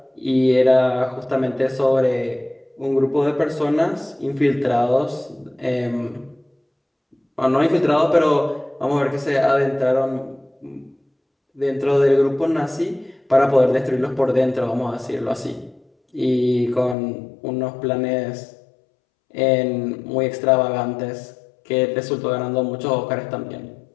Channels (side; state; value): right; drops out; at 16.9 s